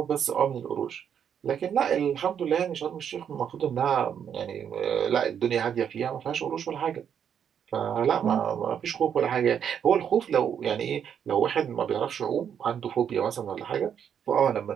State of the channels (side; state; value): left; quieter; 8.3 dB